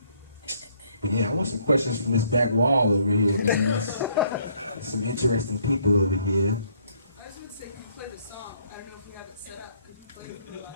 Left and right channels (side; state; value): both; inverted; correlation -0.65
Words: But yeah, I want some questions from this back wall over here, man. There's some interesting people over here. I just want to say, you played a song. I don't know if you have it set up. Could you play it on